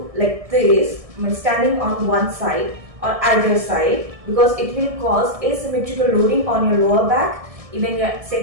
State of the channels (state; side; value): late; left; 1.7 ms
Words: like this, standing on one side or either side, because it will cause asymmetrical loading on your lower back, even your